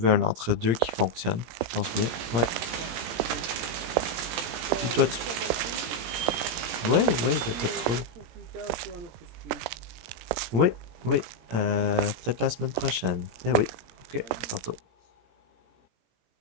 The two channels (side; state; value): left; late; 18 ms